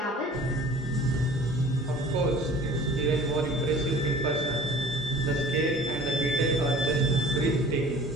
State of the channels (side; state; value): both; normal; correlation 0.46